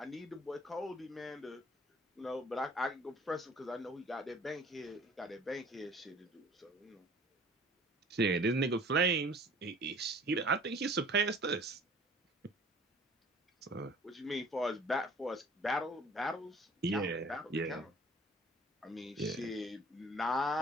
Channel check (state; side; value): normal; both; correlation 0.50